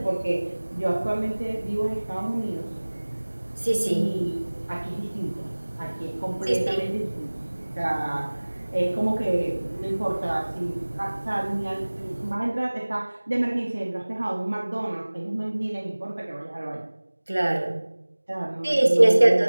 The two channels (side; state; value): both; inverted; correlation -1.00